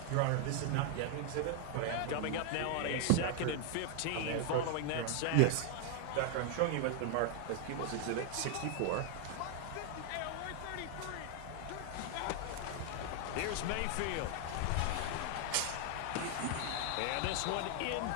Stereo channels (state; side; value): different; both; correlation 0.00